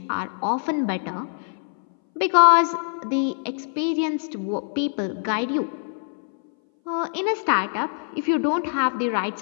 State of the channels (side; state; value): right; silent; 60 dB below the other